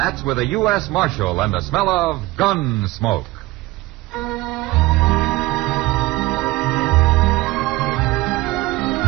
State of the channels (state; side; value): quieter; left; 19.4 dB